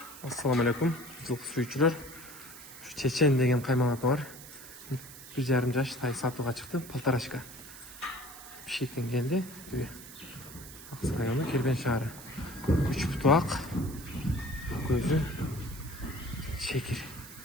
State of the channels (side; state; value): right; noise; hiss, 15 dB below the sound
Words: Assalamu alaikum, жылқы сүйүүчүлөр. Чечен деген каймал аты бар. 1,5 жаш тай сатууга чыкты, полторашка. Бишкектен келди. Аксы району, Кербен шаары. 3 буту ак, көзү чекир.